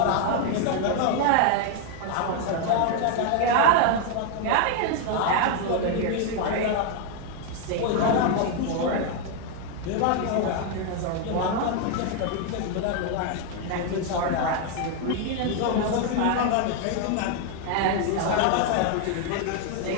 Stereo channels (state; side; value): different; both; correlation 0.00